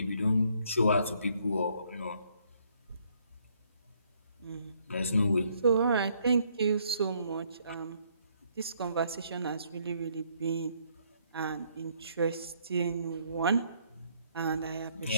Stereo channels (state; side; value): inverted; both; correlation -0.68